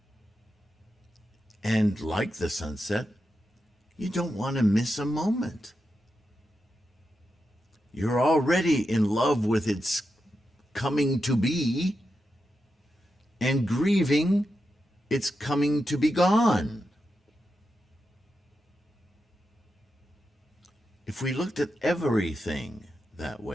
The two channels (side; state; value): both; normal; correlation 0.88